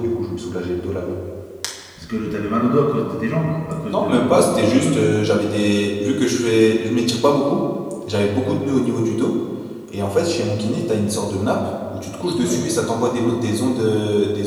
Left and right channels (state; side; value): identical; both; correlation 1.00